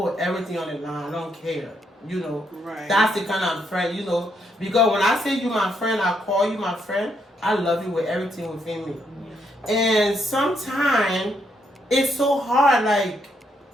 everything on the line. I don't care, you know. Right. That's the kind of friend, you know. Because when I say you my friend, I call you my friend. I love you with everything within me. And sometimes it's so hard, like.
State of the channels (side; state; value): both; normal; correlation 0.76